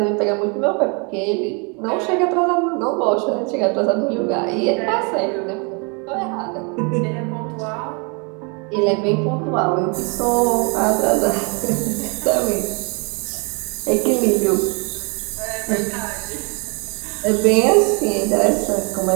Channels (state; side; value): quieter; left; 33.9 dB